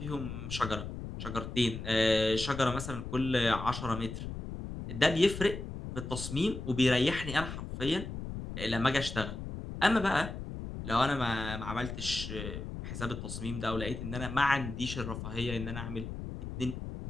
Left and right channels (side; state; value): left; noise; rumble, 7 dB below the sound